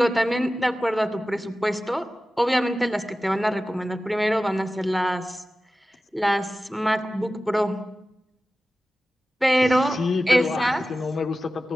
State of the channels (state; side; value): normal; both; correlation 0.95